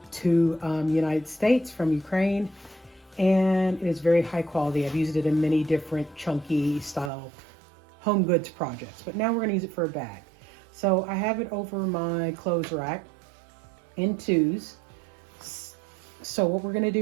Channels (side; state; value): left; drops out; at 7.1 s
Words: to United States from Ukraine, and it is very high quality. I've used it in many different chunky style home goods projects, but now we're going to use it for a bag. So I have it over my clothes rack in twos. So what we're going to